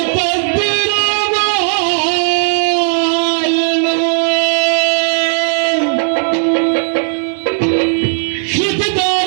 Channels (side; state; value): left; silent; digital silence